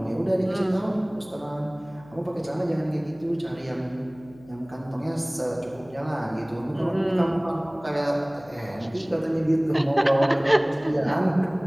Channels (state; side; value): noise; left; hum, 23 dB below the sound